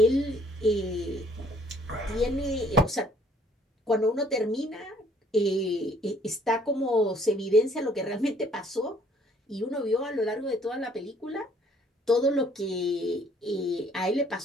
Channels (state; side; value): normal; both; correlation 0.61